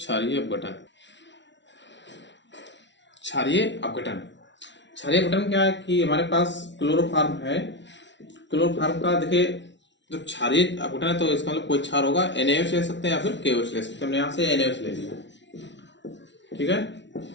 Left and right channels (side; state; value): right; late; 0.52 ms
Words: अपघटन। क्षारीय अपघटन, क्षारीय अपघटन क्या है कि हमारे पास क्लोरोफॉर्म है, क्लोरोफॉर्म का देखिए जब क्षारीय अपघटन है तो इसका मतलब कोई क्षार होगा, NaOH ले सकते हैं या फिर KOH ले सकते हैं। हमने यहाँ से NaOH ले लिया, ठीक है।